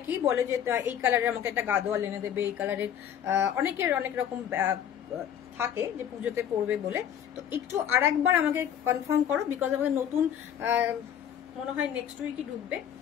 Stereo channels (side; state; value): right; quieter; 9.5 dB